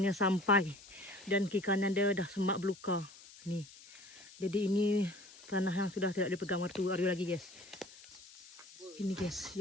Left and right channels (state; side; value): noise; left; hiss, 20 dB below the sound